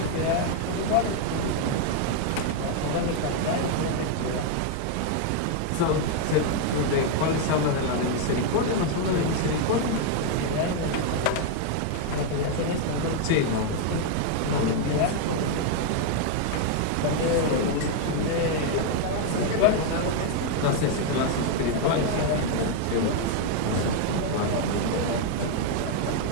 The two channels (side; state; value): both; different; correlation 0.00